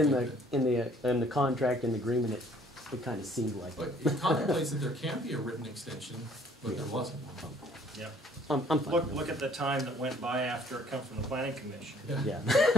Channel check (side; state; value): both; normal; correlation 0.59